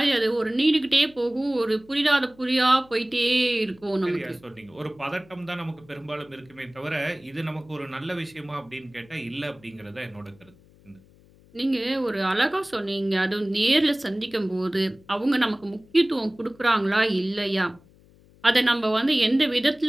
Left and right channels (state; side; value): noise; left; hum, 27 dB below the sound